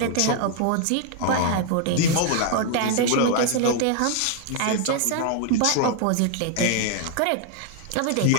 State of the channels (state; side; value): different; both; correlation 0.00